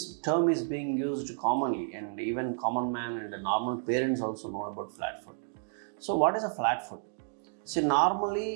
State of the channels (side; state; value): left; silent; digital silence